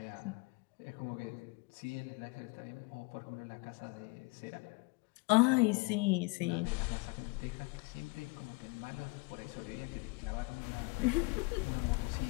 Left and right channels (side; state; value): right; quieter; 27.4 dB